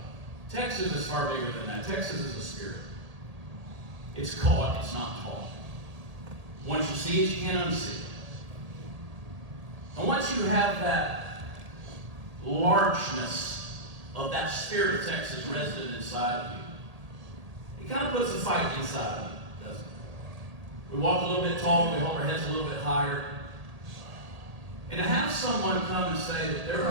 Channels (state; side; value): late; left; 1.8 ms